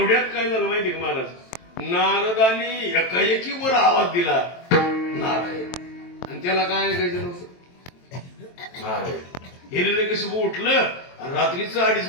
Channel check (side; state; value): right; late; 23 ms